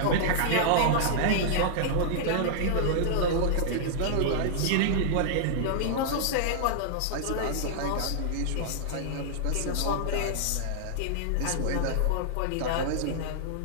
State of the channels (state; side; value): different; both; correlation -0.01